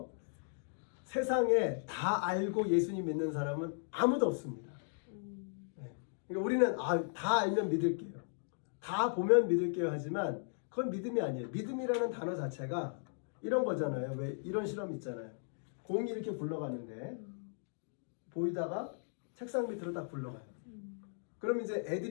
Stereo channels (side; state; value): right; silent; digital silence